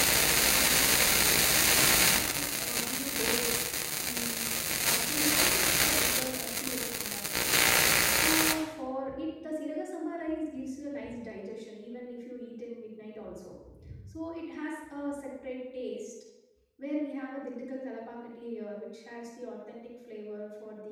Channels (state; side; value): identical; both; correlation 1.00